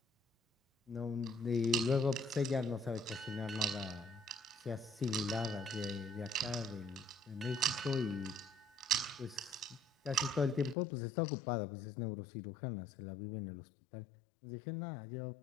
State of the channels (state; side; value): drops out; right; at 10.8 s